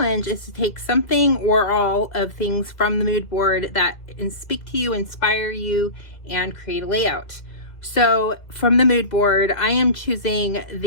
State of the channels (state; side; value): late; right; 1.9 ms